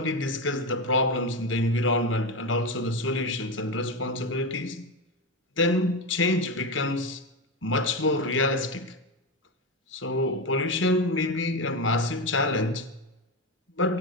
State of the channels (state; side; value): normal; both; correlation 0.15